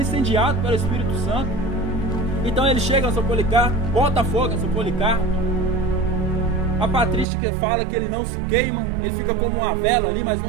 incendiado pelo Espírito Santo. Então ele chega a São Policarpo, bota fogo em São Policarpo. A patrística fala que ele não se queima, ele fica como uma vela ali, mas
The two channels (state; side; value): drops out; left; at 7.2 s